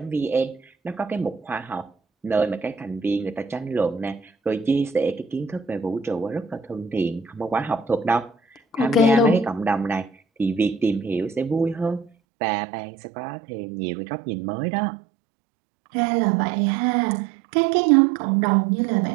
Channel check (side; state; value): left; drops out; at 12.1 s